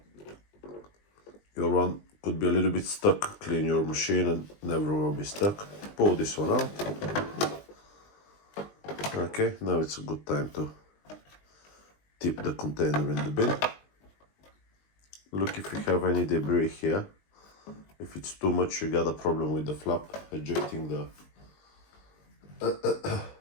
Your one could be a little bit stuck. Clean your machine and never will be stuck. Pull this one out. Okay, now it's a good time to tip the container in the bin. Look if you have any debris here. If it's too much, you got a problem with the flap ejecting the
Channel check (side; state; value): right; late; 20 ms